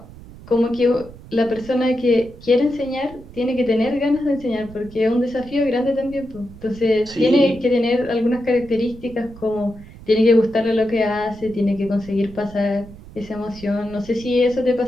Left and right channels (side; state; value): right; noise; rumble, 18 dB below the sound